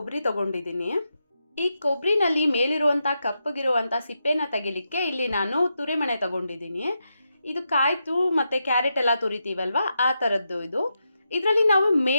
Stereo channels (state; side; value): inverted; both; correlation -0.86